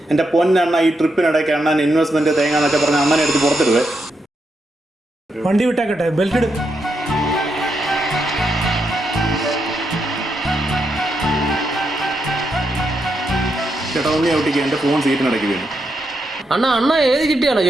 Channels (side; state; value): both; normal; correlation 0.82